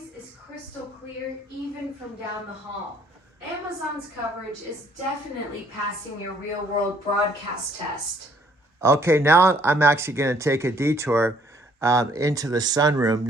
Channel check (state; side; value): normal; both; correlation 0.64